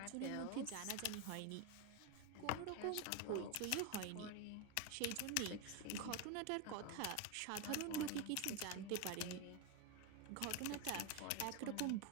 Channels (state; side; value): different; both; correlation 0.02